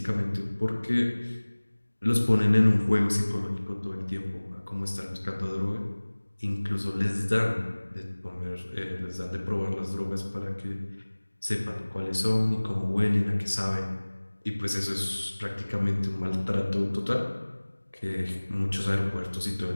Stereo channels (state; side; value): inverted; both; correlation -1.00